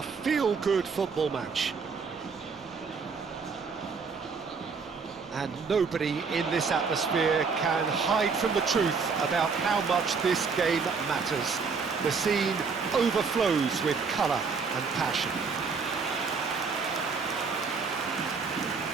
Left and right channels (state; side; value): quieter; left; 5.1 dB